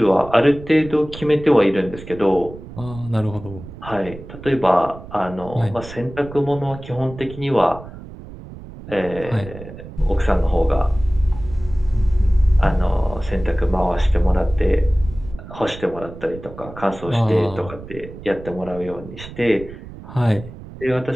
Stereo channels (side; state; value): right; noise; rumble, 15 dB below the sound